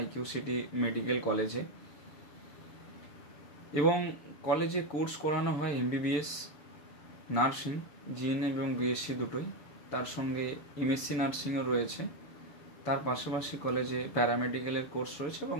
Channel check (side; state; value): right; late; 6.8 ms